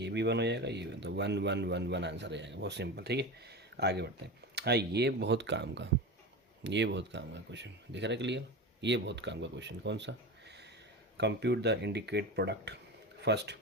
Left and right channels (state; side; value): normal; both; correlation 0.26